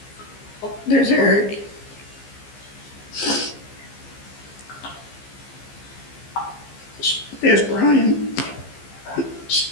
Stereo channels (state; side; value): late; right; 15 ms